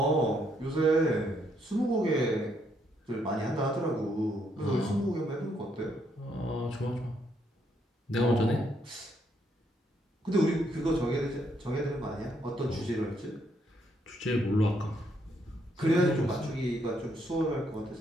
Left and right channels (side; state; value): both; normal; correlation 0.73